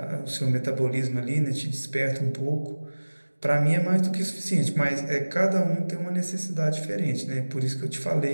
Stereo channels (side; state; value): both; inverted; correlation -1.00